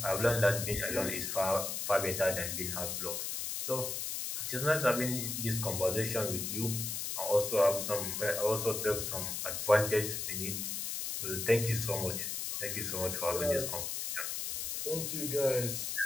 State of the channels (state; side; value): noise; left; hiss, 3 dB below the sound